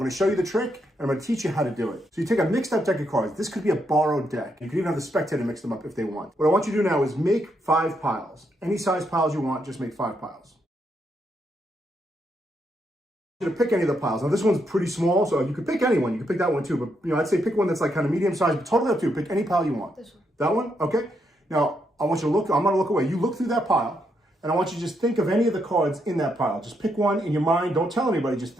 I'm gonna show you the trick, and I'm gonna teach you how to do it. So you take a mixed up deck of cards. This could be a borrowed deck. You can even have the spectator mix them up if they want. What I want you to do now is make 5 piles. Any size piles you want, just make 5 piles. To pick any of the piles. Now this one's pretty small, so you could pick any one. You could pick that one too, but I'd say pick one that's like kind of medium size, but totally up to you. Pick any pile you want. This one. That one? Okay. Now I want you to look, I'm gonna look away. You look through that pile, and I want you to just think of any of the cards in that pile. Just pick one in your mind. Don't tell anybody, just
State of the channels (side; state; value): both; normal; correlation 0.78